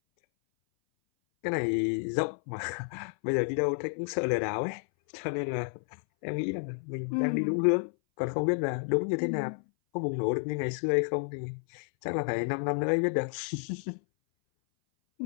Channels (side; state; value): right; silent; 57 dB below the other